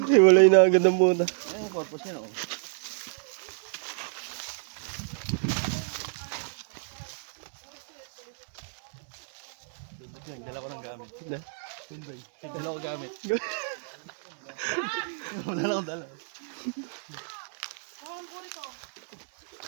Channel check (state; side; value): silent; left; digital silence